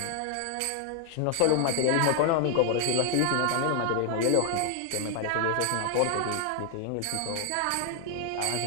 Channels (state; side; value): different; both; correlation 0.00